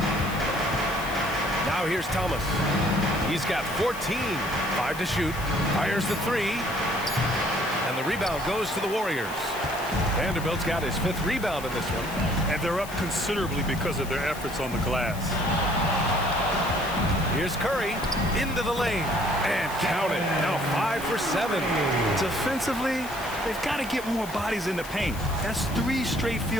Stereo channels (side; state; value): left; noise; hiss, 15 dB below the sound